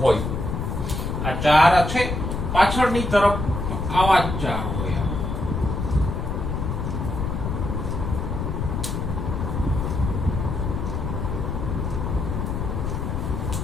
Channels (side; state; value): left; noise; rumble, 2 dB below the sound